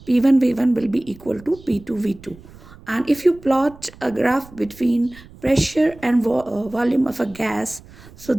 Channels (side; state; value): right; noise; rumble, 21 dB below the sound